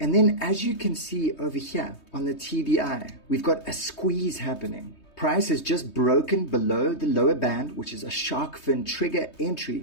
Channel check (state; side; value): late; right; 3.2 ms